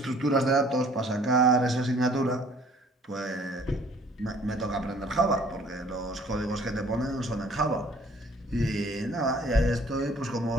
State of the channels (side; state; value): both; normal; correlation 0.55